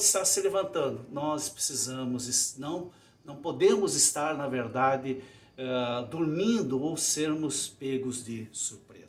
estar se levantando, nós precisamos, não podemos estar, na verdade, dormindo ou sermos pegos de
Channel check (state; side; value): identical; both; correlation 1.00